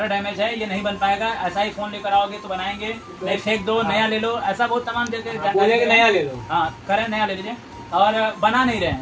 डैमेज है ये नहीं बन पाएगा ऐसा ही फ़ोन लेकर आओगे तो बनाएंगे नहीं फेंक दो नया ले लो ऐसा बहुत तमाम जगह नया ले लो। हाँ करें नया ले लीजिए और बना नहीं रहे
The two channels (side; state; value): both; identical; correlation 1.00